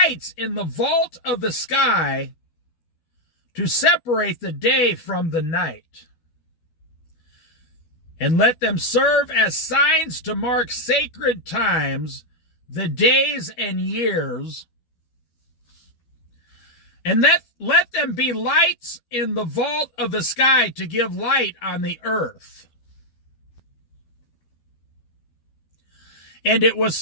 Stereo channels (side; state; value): right; late; 12 ms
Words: in the vault of the sky to separate the day from the night. And let them serve as signs to mark sacred times, the days and years. And let them be lights in the vault of the sky to give light on the earth." And it was